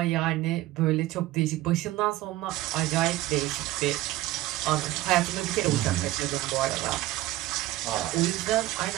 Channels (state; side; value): quieter; left; 16.6 dB